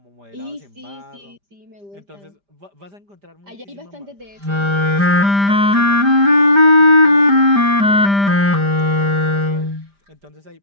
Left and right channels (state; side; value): late; left; 5.0 ms